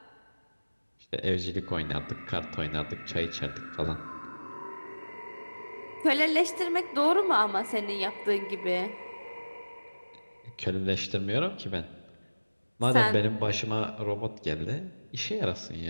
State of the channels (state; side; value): inverted; both; correlation -1.00